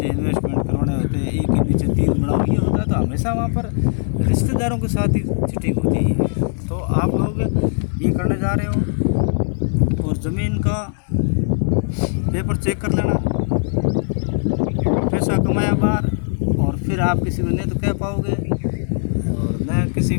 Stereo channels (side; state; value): right; silent; digital silence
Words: इन्वेस्टमेंट करवाने होते हैं, एक के नीचे 3 बनाओ, ये होता है, तो हमेशा वहाँ पर रिश्तेदारों के साथ ही चीटिंग होती है। तो आप लोग ये करने जा रहे हो और ज़मीन का पेपर चेक कर लेना, पैसा कमाया बाहर, और फिर आप किसी को नहीं तो कह पाओगे और न किसी